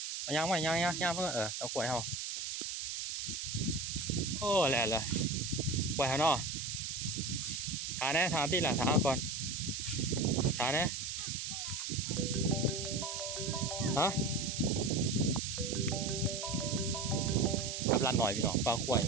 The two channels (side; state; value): right; noise; hiss, 4 dB below the sound